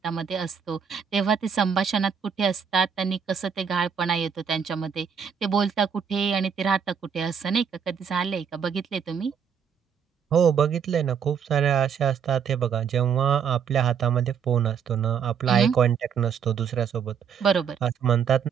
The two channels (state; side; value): quieter; left; 7.2 dB